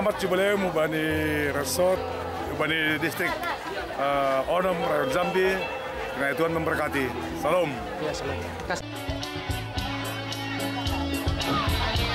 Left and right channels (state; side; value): identical; both; correlation 1.00